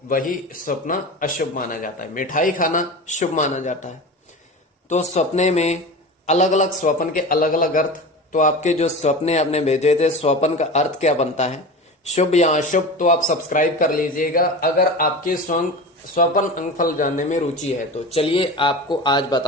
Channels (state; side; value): normal; both; correlation 0.30